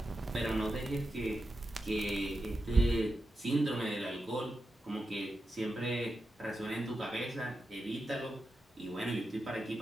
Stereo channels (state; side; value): normal; both; correlation 0.89